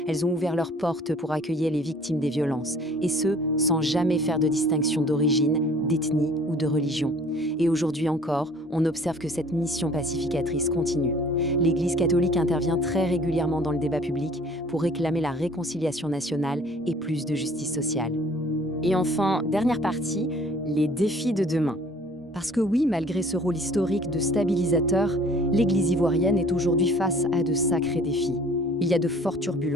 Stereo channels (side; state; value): both; normal; correlation 0.53